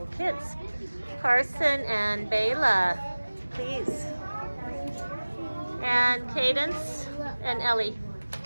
kids. Carson and Bayla, please. And Cadence and Ellie.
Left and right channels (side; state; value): both; inverted; correlation -1.00